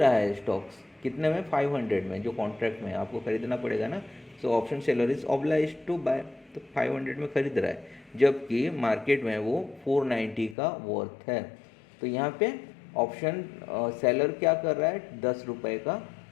है स्टॉक्स कितने में, 500 में, जो कॉन्ट्रैक्ट में आपको खरीदना पड़ेगा ना। So option seller is oblige to buy, तो 500 में खरीद रहा है, जबकि मार्केट में वो 490 का वर्थ है। तो यहाँ पे ऑप्शन सेलर क्या कर रहा है, 10 रुपये का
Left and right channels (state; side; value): drops out; right; at 10.6 s